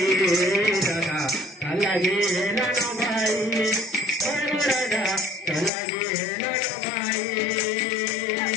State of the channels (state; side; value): drops out; right; at 5.7 s